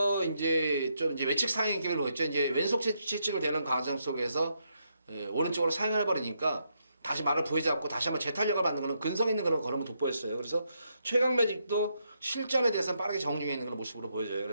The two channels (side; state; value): both; inverted; correlation -0.78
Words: 이제 좀 이제 외측 상행 기를 보였죠. 이제 왼속 채찍을 대는 과정 속에서 오른쪽으로 사용해 버리니까 다시 말을 부여잡고 다시 한번 재탄력을 받는 그런 근성 있는 그런 걸음을 돋보였어요. 그래서 최강 매직도 실전에 대해서는 빠르게 정중해 있는 그런 모습으로 보여져요.